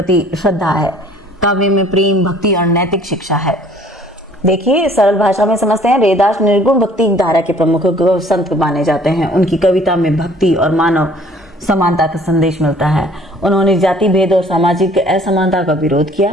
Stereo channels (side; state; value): both; normal; correlation 0.55